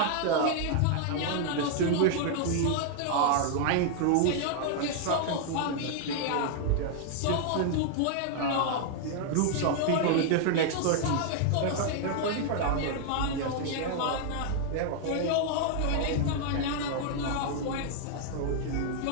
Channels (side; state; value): both; different; correlation 0.00